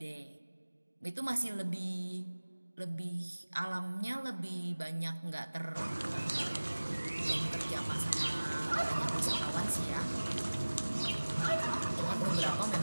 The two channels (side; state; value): both; inverted; correlation -1.00